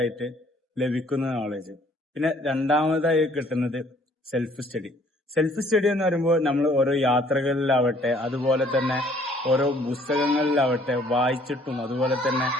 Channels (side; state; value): both; normal; correlation 0.59